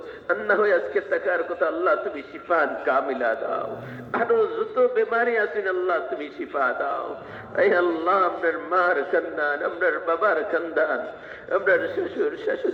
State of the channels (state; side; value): identical; both; correlation 1.00